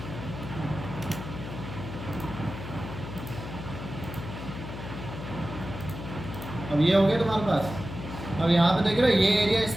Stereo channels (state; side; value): noise; left; hum, 9 dB below the sound